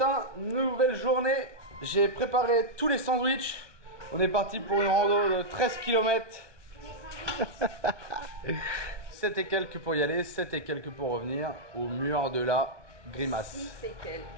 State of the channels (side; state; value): left; late; 1.2 ms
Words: nouvelle journée. J'ai préparé tous les sandwichs. On est parti pour une rando de 13 km. 7 et quelques pour y aller, 7 et quelques pour revenir au mur de la grimace. 6 et quelques.